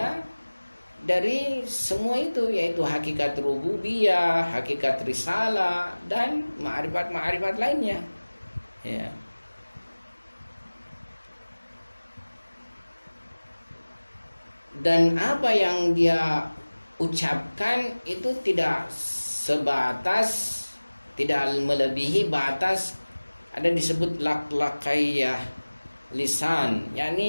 dari semua itu, yaitu hakikat rububiyah, hakikat risalah, dan ma'rifat lainnya, ya. Dan apa yang dia ucapkan itu tidak sebatas, tidak melebihi batas, ada disebut lak-lakaiyah, lisan,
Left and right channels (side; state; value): both; inverted; correlation -1.00